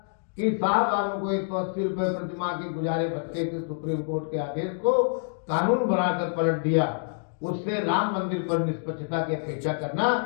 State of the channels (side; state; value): right; silent; digital silence